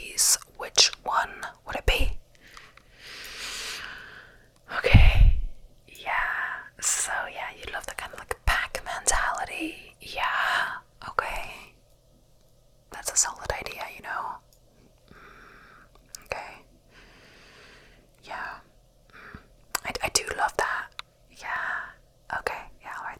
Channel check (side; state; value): both; identical; correlation 1.00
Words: which one would it be? Okay. Yeah. So, yeah, you love the kind of like pack mentality. Yeah. Okay. That's a solid idea, you know? Okay. Yeah. I do love that. Yeah. Okay. Yeah, I'll write